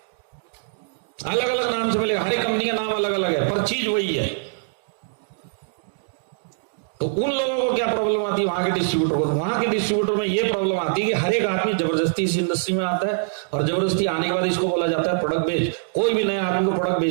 अलग अलग नाम से मिलेगा, हर एक कंपनी का नाम अलग अलग है, पर चीज वही है। तो उन लोगों को क्या प्रॉब्लम आती है, वहां के डिस्ट्रीब्यूटर को? वहां के डिस्ट्रीब्यूटर में ये प्रॉब्लम आती है कि हर एक आदमी जबरदस्ती इस इंडस्ट्री में आता है और जबरदस्ती आने के बाद इसको बोला जाता है प्रोडक्ट बेच। कोई भी नया आदमी को प्रोडक्ट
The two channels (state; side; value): silent; left; digital silence